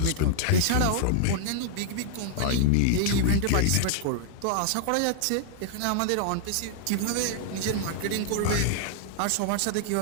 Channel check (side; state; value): both; different; correlation 0.00